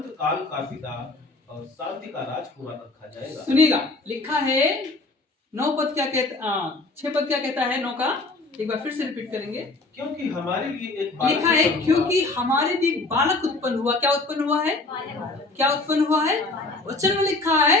काल का पिता और शांति का राजकुमार रखा जाएगा। सुनिएगा, लिखा है 9 पद क्या कहता, 6 पद क्या कहता है 9 का, एक बार फिर से रिपीट करेंगे। क्योंकि हमारे लिए एक बालक लिखा है क्योंकि हमारे लिए एक बालक उत्पन्न हुआ। क्या उत्पन्न हुआ है? क्या उत्पन्न हुआ है? वचन में लिखा है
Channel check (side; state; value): right; quieter; 3.2 dB